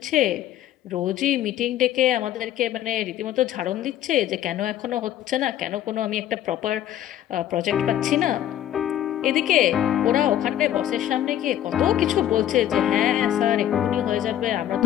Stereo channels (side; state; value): right; quieter; 11.7 dB